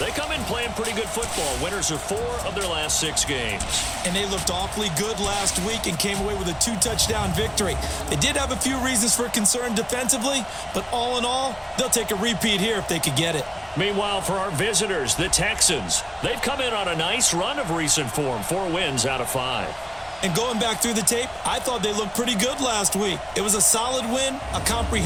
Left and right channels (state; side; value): identical; both; correlation 1.00